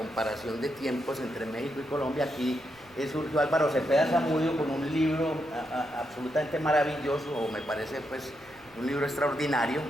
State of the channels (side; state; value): right; noise; rumble, 29 dB below the sound